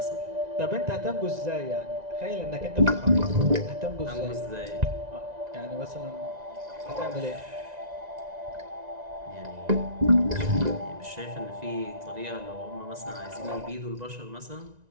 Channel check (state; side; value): late; left; 1.9 ms